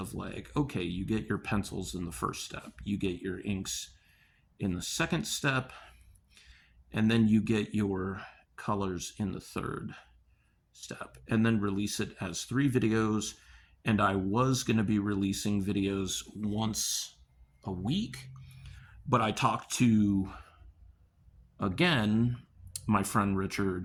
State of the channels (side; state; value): both; identical; correlation 1.00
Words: like, okay, you get your pencils in the first step, you get your inks in the second step, and then you get your colors in the third step, and then release it as 3 videos. And I was going to be releasing videos once a week, but I talked to, again, my friend